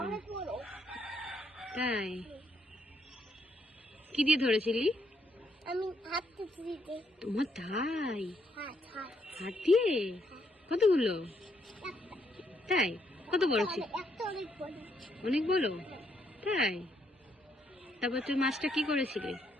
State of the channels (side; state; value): both; normal; correlation 0.74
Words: তাই? কি দিয়ে ধরেছিলি? আমি হাত দিতে। তোমার তাই? হাত হাত দিয়ে? কতগুলো? তাই? কত বড় ছিল? একটা অনেক বড়। অনেক বড়? তাই? তারপর তুই মাছটা কি করেছিলি?